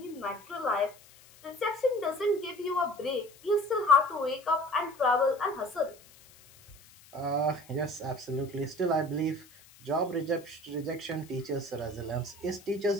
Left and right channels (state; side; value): noise; left; hiss, 24 dB below the sound